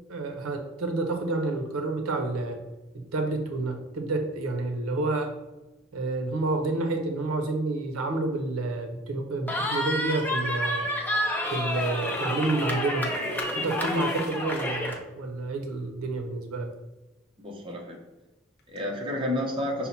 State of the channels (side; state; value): both; normal; correlation 0.43